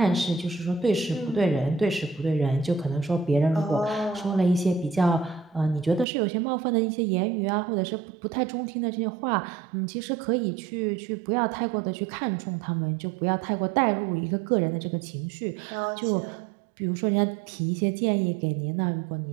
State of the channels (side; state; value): left; drops out; at 6.1 s